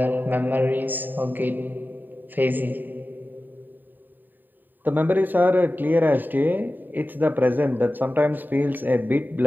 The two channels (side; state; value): left; late; 0.090 ms